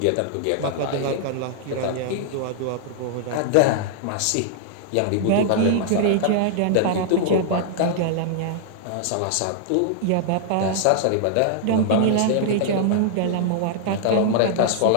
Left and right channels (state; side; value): different; both; correlation -0.01